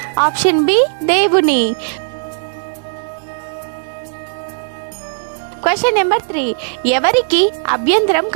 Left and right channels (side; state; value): left; silent; digital silence